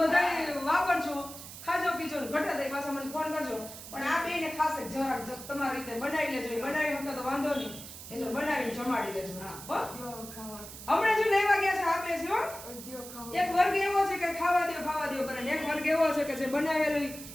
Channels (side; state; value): right; noise; hiss, 13 dB below the sound